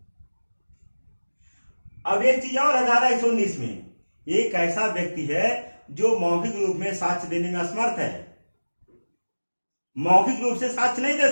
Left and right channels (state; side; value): inverted; both; correlation -1.00